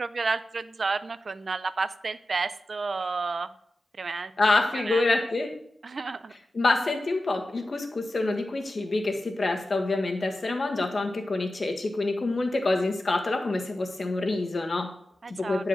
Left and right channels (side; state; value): both; normal; correlation 0.93